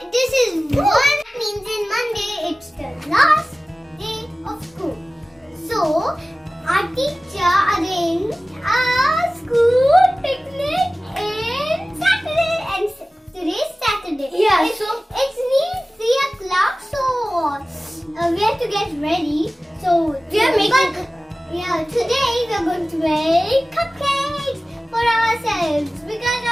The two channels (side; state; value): both; normal; correlation 0.97